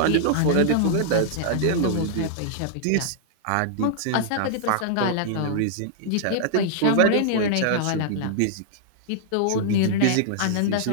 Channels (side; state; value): both; different; correlation -0.01